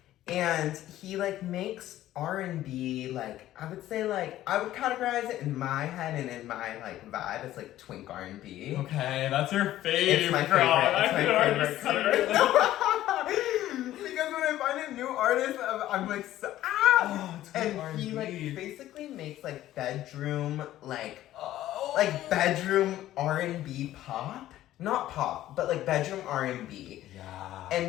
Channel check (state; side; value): quieter; right; 13.9 dB